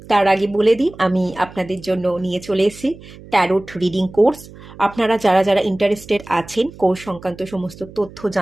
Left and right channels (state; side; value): noise; right; hum, 19 dB below the sound